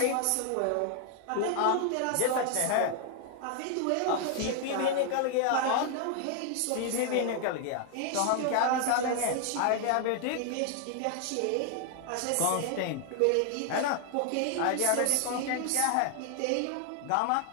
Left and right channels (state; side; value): different; both; correlation 0.00